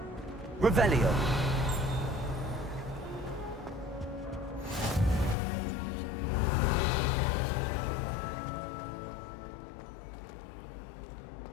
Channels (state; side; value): drops out; right; at 5.4 s